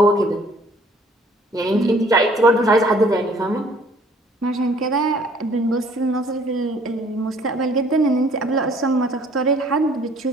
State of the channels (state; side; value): normal; both; correlation 0.58